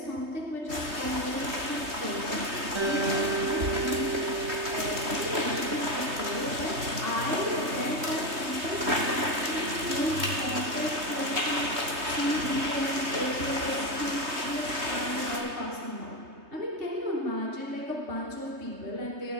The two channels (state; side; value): late; left; 3.2 ms